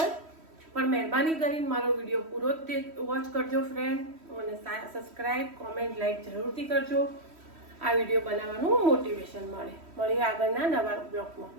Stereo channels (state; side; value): late; left; 3.1 ms